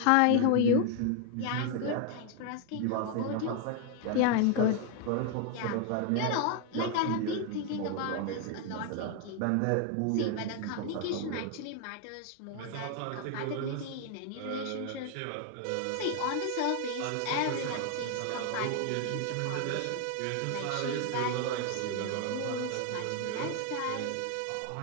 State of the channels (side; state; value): both; different; correlation 0.00